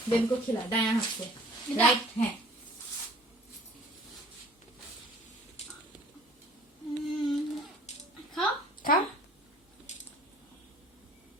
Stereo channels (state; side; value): normal; both; correlation 0.51